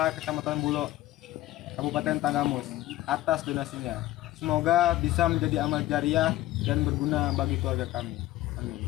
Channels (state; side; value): quieter; right; 15.8 dB